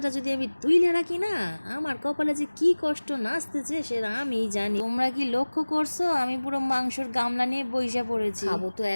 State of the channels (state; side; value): inverted; both; correlation -1.00